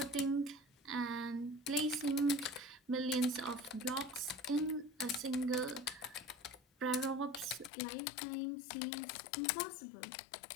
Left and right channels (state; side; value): drops out; right; at 7.7 s